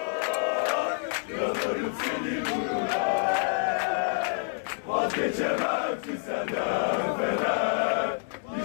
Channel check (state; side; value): silent; right; digital silence